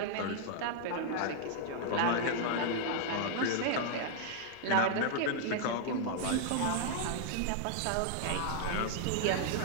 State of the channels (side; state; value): both; different; correlation -0.01